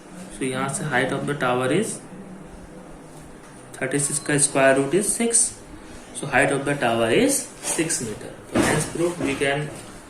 So यहाँ से height of the tower is 36 का square root is 6, so height of the tower is 6 metre. तो hence proof we can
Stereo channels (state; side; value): identical; both; correlation 1.00